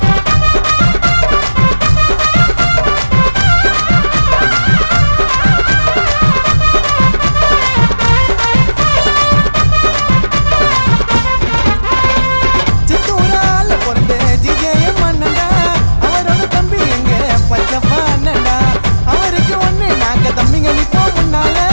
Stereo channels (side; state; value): both; inverted; correlation -1.00